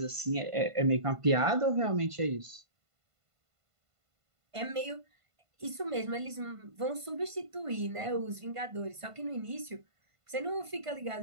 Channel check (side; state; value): left; late; 1.5 ms